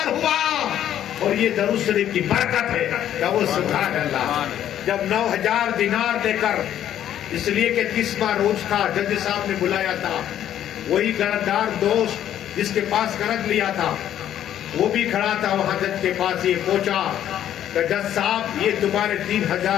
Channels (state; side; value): quieter; right; 11.0 dB